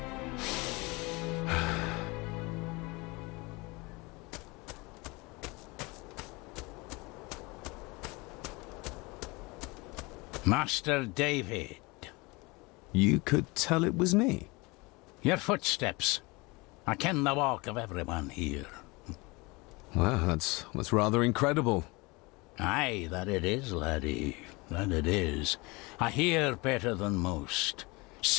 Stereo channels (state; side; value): quieter; right; 25.3 dB